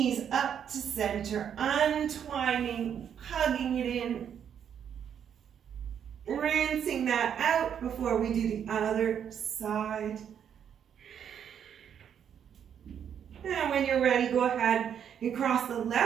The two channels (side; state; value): left; quieter; 8.5 dB